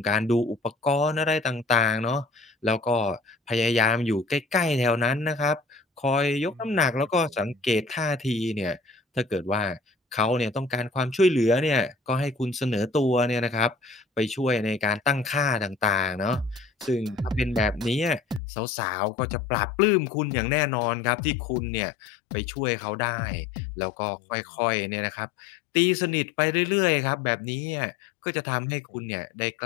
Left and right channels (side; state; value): right; drops out; at 18.4 s